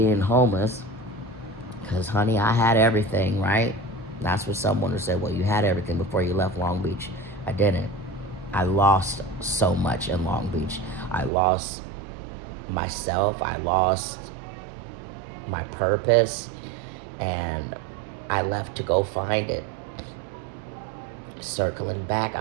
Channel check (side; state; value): left; drops out; at 11.3 s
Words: homeless, because, honey, I had everything, right? That's what someone would say, well, you had everything before you left Long Beach. I didn't. I lost so much in Long Beach. I lost myself. I lost my purpose. And I left to go find it. Circling back,